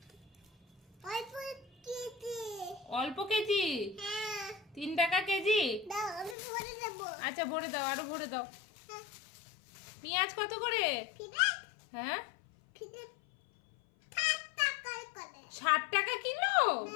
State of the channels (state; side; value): drops out; right; at 6.4 s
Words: অল্প কেজি 3 টাকা কেজি। আচ্ছা ভরে দাও, আরো ভরে দাও। পেঁয়াজ কত করে? হ্যাঁ 60 টাকা কিলো।